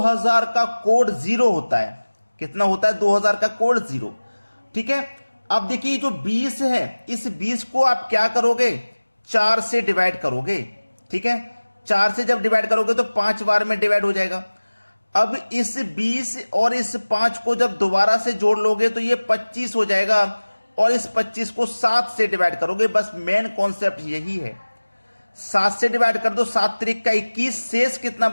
का कोड 0 होता है। कितना होता है? 2000 का कोड 0। ठीक है। अब देखिए जो 20 है, इस 20 को आप क्या करोगे? 4 से डिवाइड करोगे। ठीक है। 4 से जब डिवाइड करोगे तो 5 बार में डिवाइड हो जाएगा। अब इस 20 और इस 5 को जब दोबारा से जोड़ लोगे तो ये 25 हो जाएगा और इस 25 को 7 से डिवाइड करोगे। बस मेन कॉन्सेप्ट यही है। 7 से डिवाइड कर दो, 7 त्रिक का 21, शेष कितना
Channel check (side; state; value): both; inverted; correlation -1.00